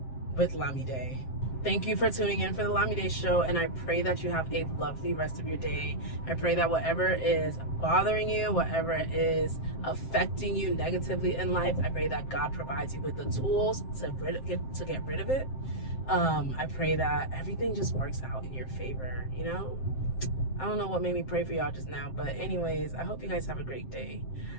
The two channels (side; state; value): right; late; 7.6 ms